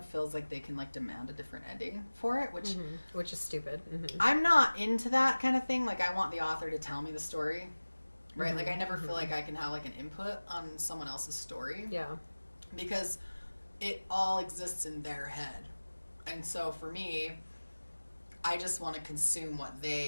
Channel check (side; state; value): both; inverted; correlation -1.00